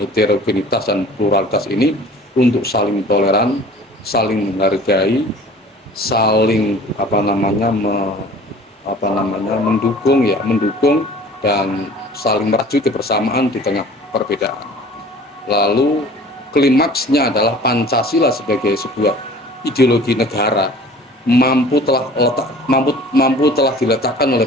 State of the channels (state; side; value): normal; both; correlation 0.46